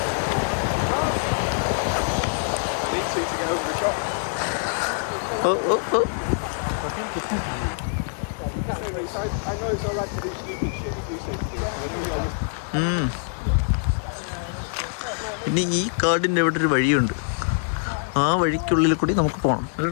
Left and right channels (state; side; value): silent; right; digital silence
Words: ഇനി ഈ കാർഡിൻ്റെ ഇവിടെ ഒരു വഴിയുണ്ട്. ആ വഴിക്കുള്ളിൽ കൂടി നമുക്ക് പോകണം